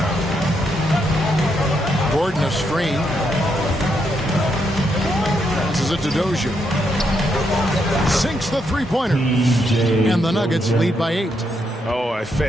Gordon a screen. Passes it to Dozier. Sinks the three-pointer. And the Nuggets lead by 8. Oh, a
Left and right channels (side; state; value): both; normal; correlation 0.78